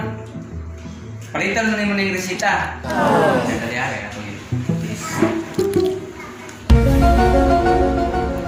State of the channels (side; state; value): both; identical; correlation 1.00